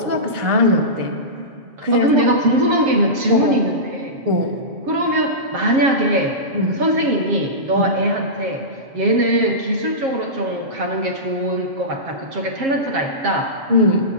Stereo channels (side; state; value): left; late; 7.4 ms